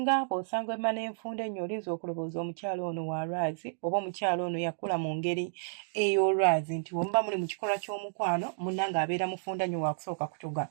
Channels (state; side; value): silent; left; digital silence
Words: bw'osanga emma n'enfunda ennyo olinza okulowooza omukyala ono wa lwazi oba omukyala ono yakula mu ngeri ey'olwazi nti bwe muba muli mu kikolwa ky'omukwano munnange abeera mufunda nnyo waakusooka kutuga.